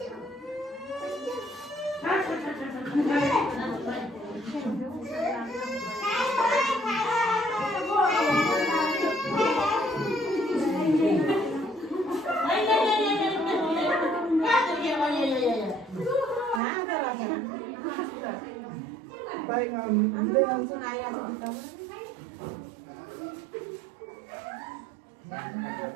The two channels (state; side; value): drops out; left; at 16.6 s